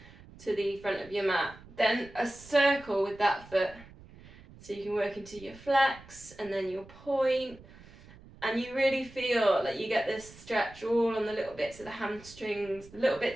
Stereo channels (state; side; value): noise; right; rumble, 21 dB below the sound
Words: front of your mat. Then a circle with that foot. So you can work into your flex and then your point. And you really feel like you get this stretch all on the little bits of the hamstrings, the little